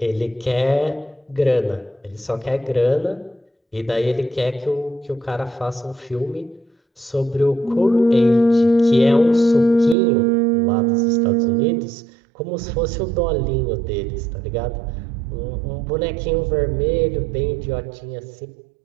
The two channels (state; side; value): drops out; left; at 10.0 s